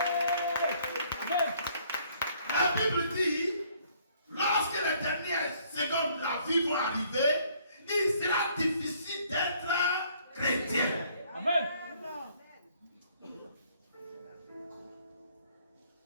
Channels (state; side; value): inverted; both; correlation -0.62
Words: La Bible dit, lorsque les dernières secondes de la vie vont arriver, il sera difficile d'être chrétien. Amen.